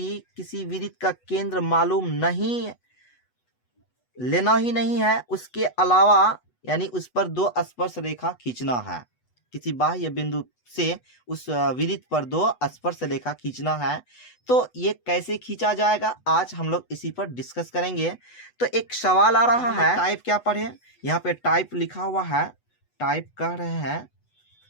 किसी वृत्त का केंद्र मालूम नहीं, लेना ही नहीं है, उसके अलावा यानी उस पर दो स्पर्श रेखा खींचना है। किसी बाह्य बिंदु से उस वृत्त पर दो स्पर्श रेखा खींचना है। तो ये कैसे खींचा जाएगा, आज हम लोग इसी पर डिस्कस करेंगे। तो एक सवाल आ रहा है, टाइप क्या पढ़े, यहाँ पे टाइप लिखा हुआ है। टाइप कह रहे हैं,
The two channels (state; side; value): late; right; 8.1 ms